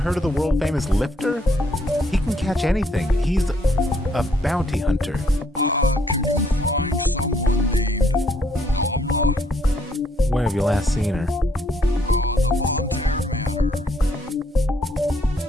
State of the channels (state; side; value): normal; both; correlation 0.69